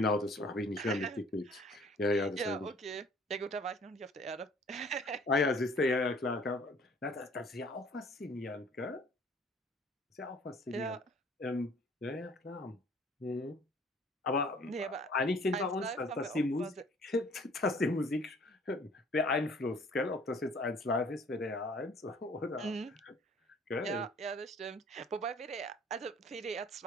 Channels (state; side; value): normal; both; correlation 0.54